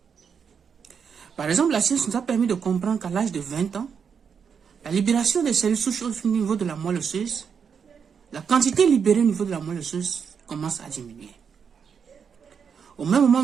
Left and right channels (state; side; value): quieter; left; 6.7 dB